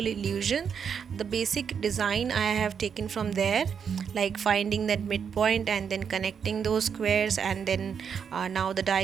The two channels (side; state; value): left; quieter; 7.0 dB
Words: illusion. The basic design I have taken from there, like finding that midpoint and then connecting those squares, and then now the